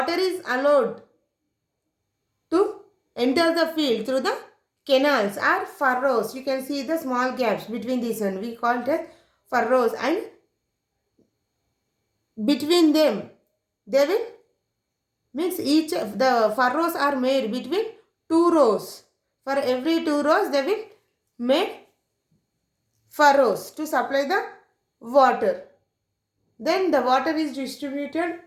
is allowed to enter the field through the canals or furrows. You can see the small gaps between these one. We call it as furrows, and between them they will, means each of the furrows are made between two rows. For every two rows they will make furrows to supply the water. Then the water is distributed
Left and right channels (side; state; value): both; identical; correlation 1.00